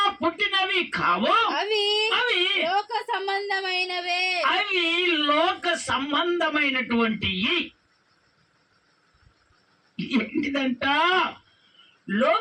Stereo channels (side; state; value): both; identical; correlation 1.00